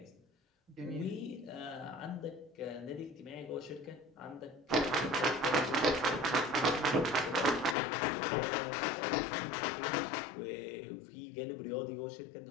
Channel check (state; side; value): drops out; right; at 7.8 s